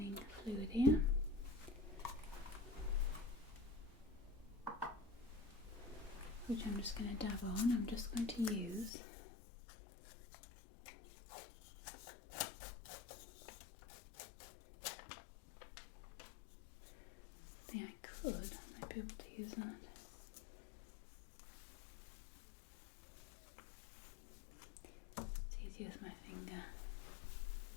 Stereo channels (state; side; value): drops out; right; at 8.9 s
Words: fluid here, which I'm just going to dab on. I'm just going to use I might be able to use that. It's easy with my finger.